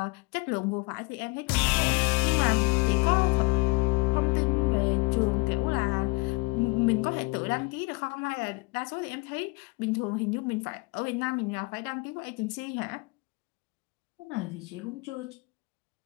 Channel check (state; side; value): quieter; right; 27.0 dB